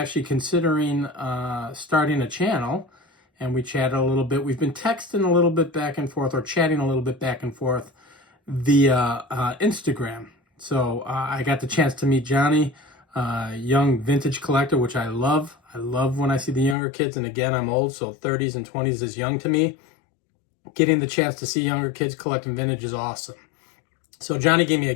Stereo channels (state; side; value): drops out; right; at 16.8 s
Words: considering starting a channel, and we chatted a little bit. We've been texting a little bit back and forth, or chatting a little bit back and forth via Instagram. So I got the chance to meet Johnny, young vintage collector, which I love. I love when I see the younger kids, and again, I'm old, so 30s and 20s is young to me. Getting the chance to see younger kids collecting vintage is awesome. So Johnny gave me a